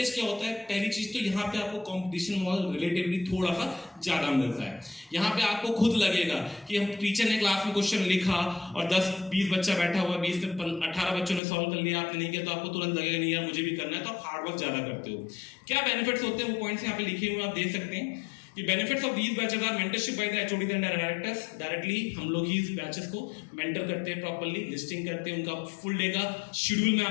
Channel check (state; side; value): drops out; right; at 11.4 s